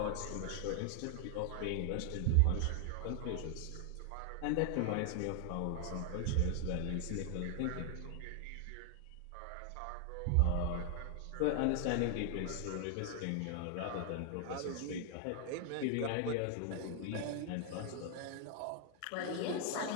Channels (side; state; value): both; different; correlation 0.00